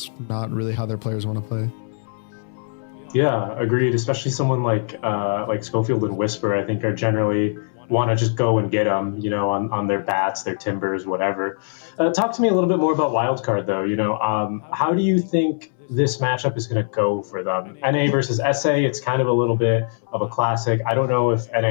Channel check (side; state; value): right; silent; 64 dB below the other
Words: not really how their players want to play. Yeah, agreed. Especially someone like Schofield and Whisper, I think, are generally want to just go and get them, on their bats, their timbers, whatever. Talk to me a little bit more about Wildcard, though. How do you think this matchup is going to go for them? NA versus SA, it's kind of a little bit of a classic. I don't know if NA